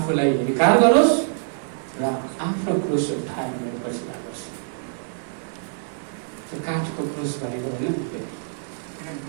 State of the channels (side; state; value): left; silent; 60 dB below the other